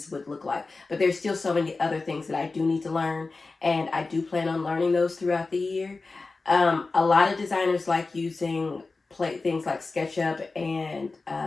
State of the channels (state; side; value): quieter; right; 3.8 dB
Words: would look like. But there's still so many other things that I do need to learn, and I do plan on learning those throughout the year. A lot of designers like using things like SketchUp and